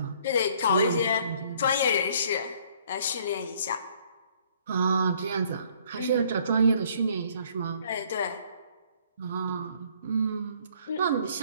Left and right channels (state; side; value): inverted; both; correlation -0.60